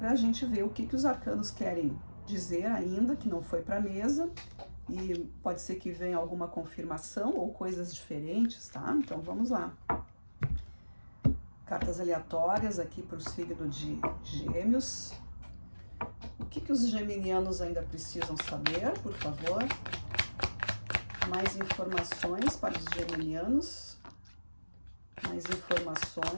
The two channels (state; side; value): inverted; both; correlation -1.00